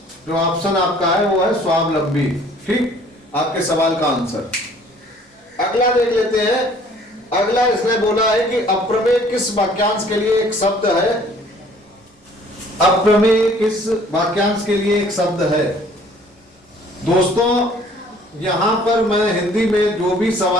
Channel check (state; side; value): normal; both; correlation 0.56